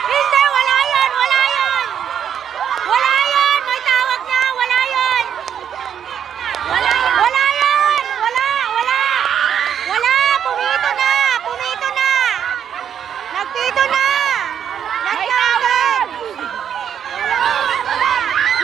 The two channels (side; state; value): left; quieter; 8.7 dB